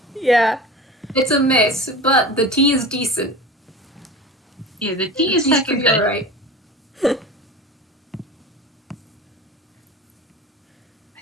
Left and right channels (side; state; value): both; normal; correlation 0.33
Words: Yeah. It's a mess, but the tea is decent. Yeah, the tea is Tea's second pretty good. alright.